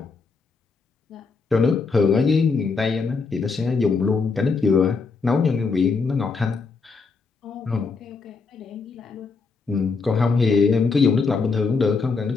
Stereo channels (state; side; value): quieter; right; 4.6 dB